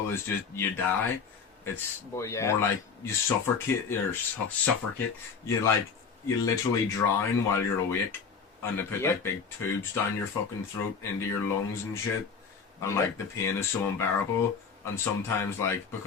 as just you die. It's more like you suffocate or suffocate. You literally drown while you're awake, and they put like big tubes down your fucking throat into your lungs and shit, and like the pain is so unbearable. And sometimes, like,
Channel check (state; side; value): quieter; right; 5.8 dB